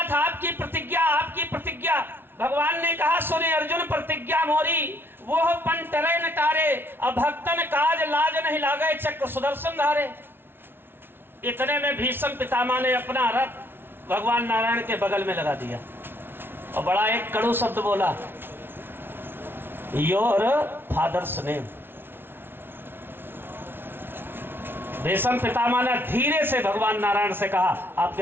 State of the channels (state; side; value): late; left; 0.11 ms